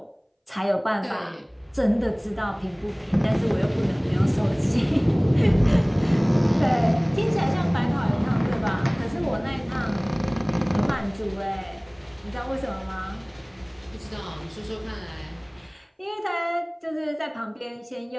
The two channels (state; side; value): identical; both; correlation 1.00